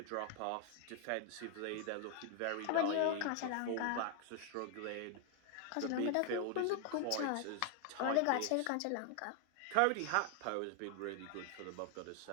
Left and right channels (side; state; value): both; different; correlation 0.00